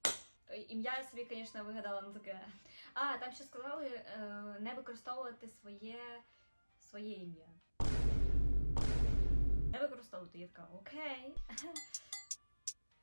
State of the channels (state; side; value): inverted; both; correlation -1.00